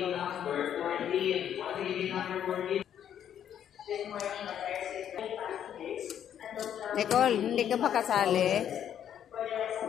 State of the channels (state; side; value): quieter; right; 9.7 dB